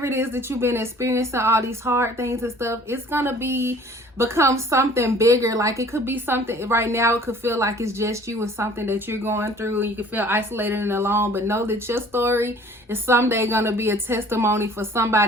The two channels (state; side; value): normal; both; correlation 0.51